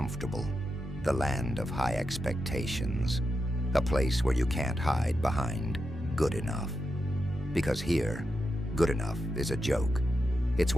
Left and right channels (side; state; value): both; normal; correlation 0.87